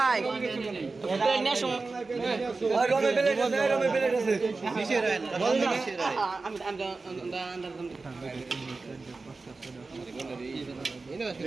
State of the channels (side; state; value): left; quieter; 3.8 dB